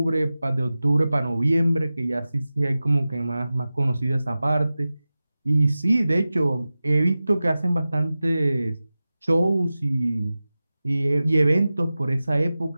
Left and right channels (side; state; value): both; inverted; correlation -0.96